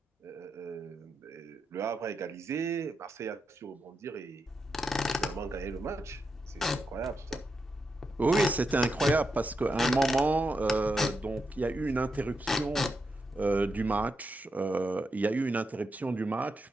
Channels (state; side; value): normal; both; correlation 0.85